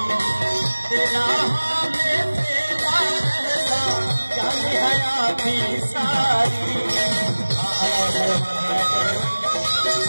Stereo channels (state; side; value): inverted; both; correlation -1.00